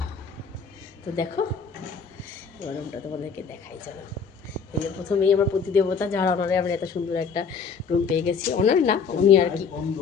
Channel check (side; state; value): right; quieter; 5.8 dB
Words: তো দেখো এবার রুমটা তোমাদেরকে দেখাই। চলো, এই যে প্রথমেই আমার প্রতিদেবতা, যার অনারে আমরা এত সুন্দর একটা রুম পেয়ে গেছি। অনার না, উনি আর কি।